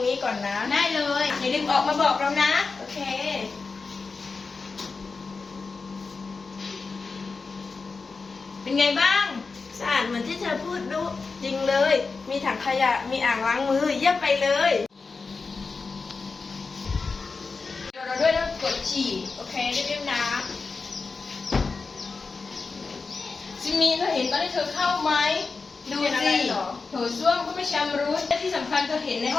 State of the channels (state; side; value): quieter; right; 4.4 dB